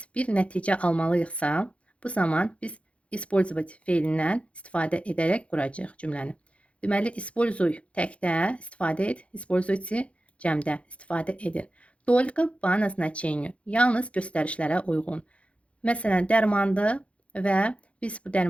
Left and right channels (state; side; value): late; right; 0.062 ms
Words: bir nəticə almalıyıqsa, bu zaman biz использовать feilindən istifadə edərək quracağıq cümləni. Deməli, используй təkdə istifadə et, используйте cəmdə istifadə edin. Только по назначению, yalnız göstərişlərə uyğun. Məsələn, dərmandır və biz bu